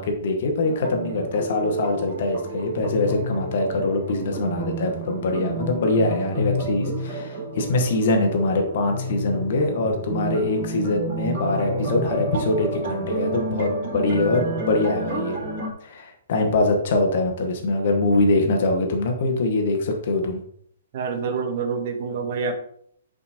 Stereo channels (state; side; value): inverted; both; correlation -0.50